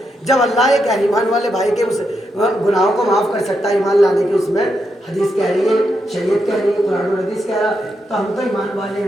جب اللہ ایک ایمان والے بھائی کے اس گناہوں کو معاف کر سکتا ہے ایمان لانے کی، اس میں حدیث کہہ رہی ہے، شریعت کہہ رہی ہے، قرآن اور حدیث کہہ رہا ہے، تو ہم تو ایمان والے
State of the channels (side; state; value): both; normal; correlation 0.83